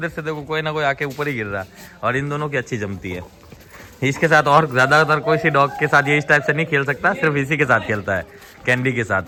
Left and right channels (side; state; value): both; identical; correlation 1.00